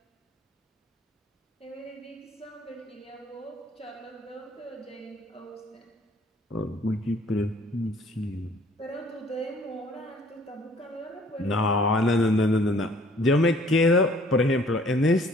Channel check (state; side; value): normal; both; correlation 0.57